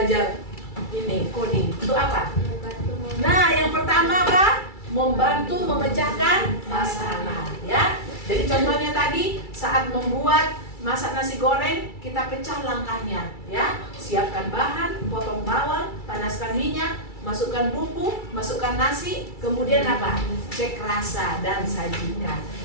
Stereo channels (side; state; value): right; late; 2.3 ms